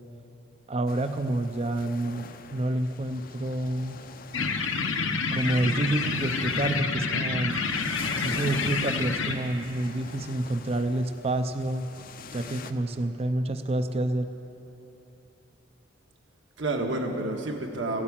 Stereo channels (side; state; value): both; normal; correlation 0.56